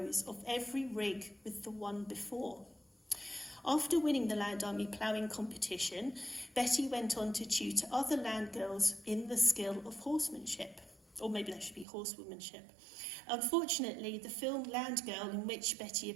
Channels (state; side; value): drops out; left; at 11.9 s